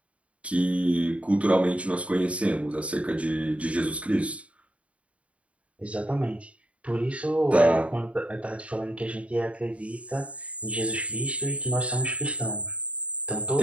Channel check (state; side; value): late; left; 0.064 ms